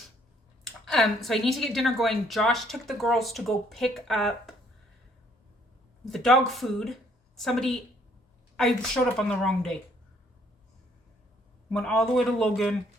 So I need to get dinner going. Josh took the girls to go pick up the dog food. I showed up on the wrong day. Went all the way to Logan,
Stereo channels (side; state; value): both; normal; correlation 0.64